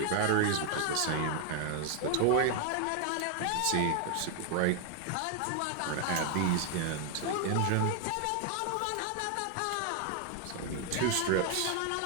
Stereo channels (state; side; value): different; both; correlation 0.00